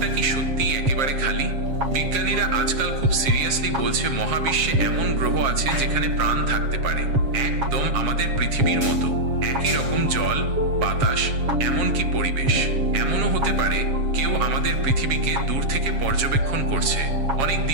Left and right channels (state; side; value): late; left; 7.4 ms